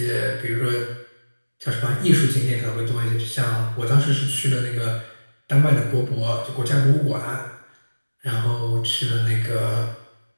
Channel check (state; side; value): inverted; both; correlation -1.00